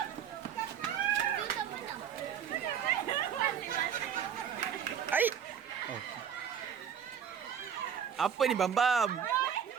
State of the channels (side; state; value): left; quieter; 8.2 dB